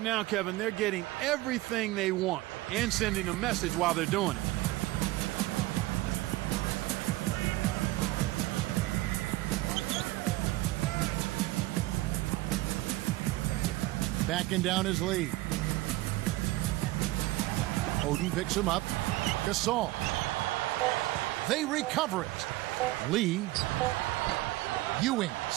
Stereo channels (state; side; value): quieter; left; 18.7 dB